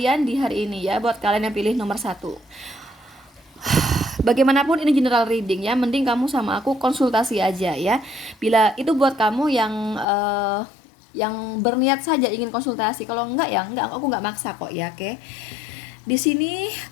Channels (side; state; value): right; drops out; at 10.1 s